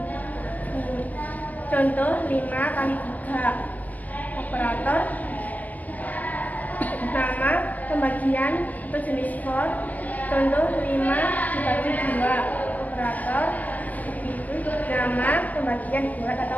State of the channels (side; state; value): right; late; 0.076 ms